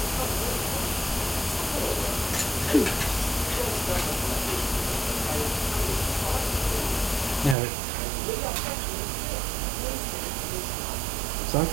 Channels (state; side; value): drops out; left; at 7.6 s